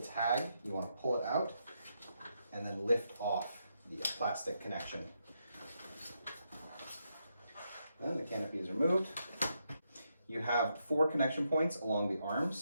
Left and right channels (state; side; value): inverted; both; correlation -0.81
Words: tag. You want to pull it out and then lift off the plastic connection. Then the canopy is removed. You have 4 connection points along the